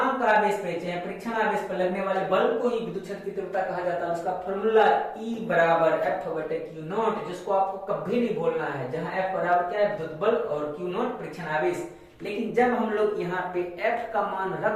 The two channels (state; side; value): identical; both; correlation 1.00